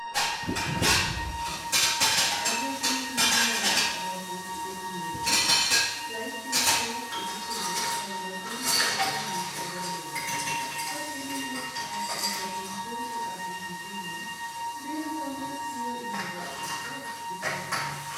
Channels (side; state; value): both; identical; correlation 1.00